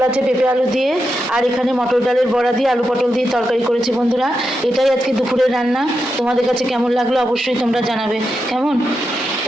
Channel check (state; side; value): normal; both; correlation 0.87